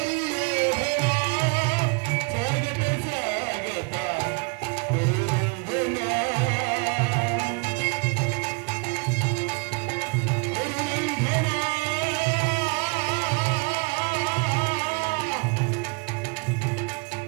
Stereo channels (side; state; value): left; quieter; 32.3 dB